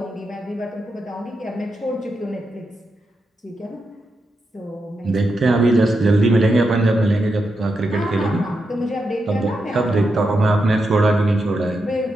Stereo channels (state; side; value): normal; both; correlation 0.86